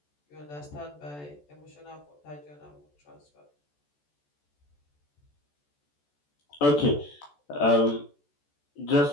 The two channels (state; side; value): late; right; 14 ms